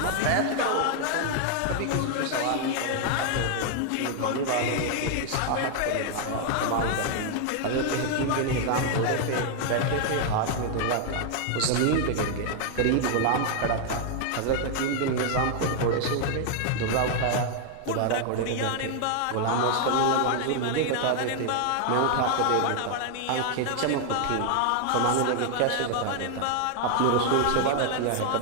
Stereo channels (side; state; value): both; different; correlation 0.00